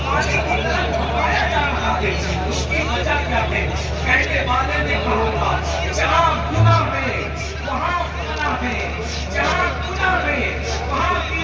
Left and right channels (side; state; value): both; identical; correlation 1.00